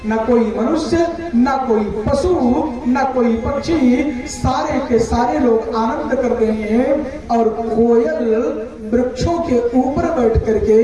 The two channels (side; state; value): both; identical; correlation 1.00